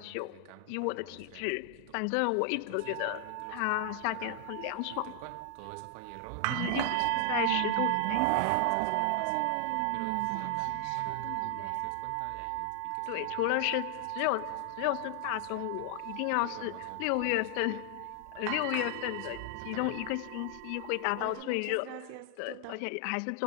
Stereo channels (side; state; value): both; different; correlation 0.00